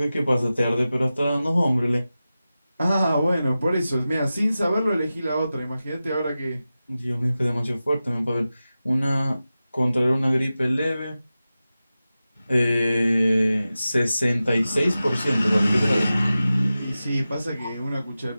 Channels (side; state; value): both; inverted; correlation -0.94